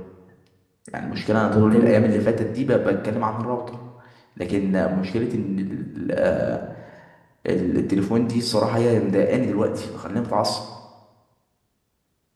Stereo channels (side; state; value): both; identical; correlation 1.00